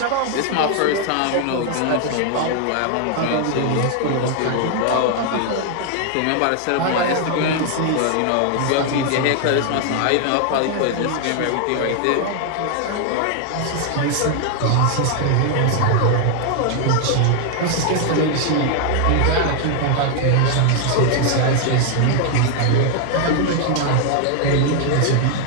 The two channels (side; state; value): both; different; correlation 0.00